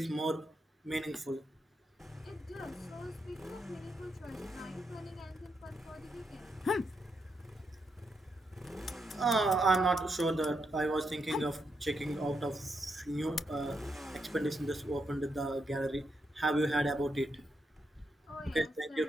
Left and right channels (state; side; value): normal; both; correlation 0.81